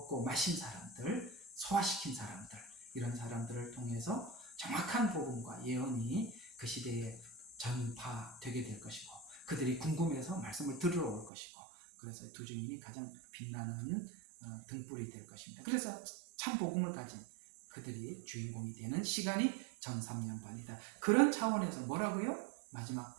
마신 사람들, 소화시킨 사람들, 이런 사람들을 통해서 정확한 복음과 예언이 그 시대에 전파되게 될 것이고, 그들이 궁금해서 말씀을 들으러 올 것이고, 그래서 두 증인이 가장 빛나는 등불이 될 것입니다. 그래서 참 복음을 가진 그들이 주인공이 되는 시간이 전 3년반이다. 그런 차원에서 뭐라고요? 마지막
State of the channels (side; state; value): left; drops out; at 11.3 s